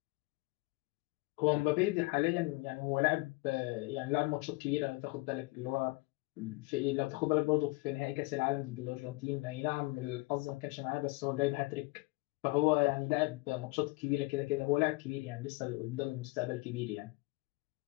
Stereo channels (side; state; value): right; quieter; 24.0 dB